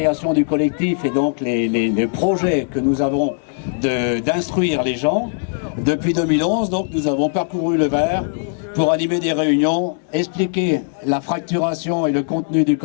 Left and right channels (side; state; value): right; silent; 66 dB below the other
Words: du collectif et donc les projets que nous avons d'instruire les gens, depuis 2011, donc nous avons parcouru le Var pour animer des réunions, expliquer la fracturation et le contenu du